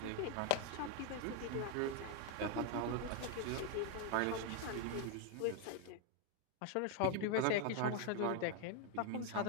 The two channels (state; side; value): different; both; correlation 0.01